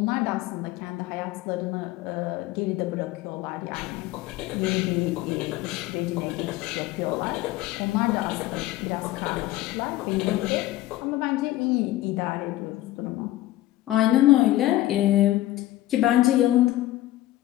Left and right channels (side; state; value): right; quieter; 15.7 dB